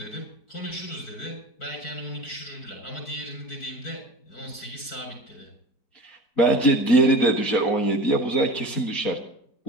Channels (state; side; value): late; right; 4.5 ms